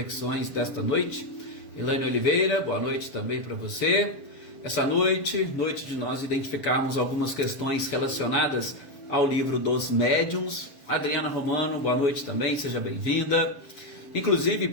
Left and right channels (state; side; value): late; right; 7.0 ms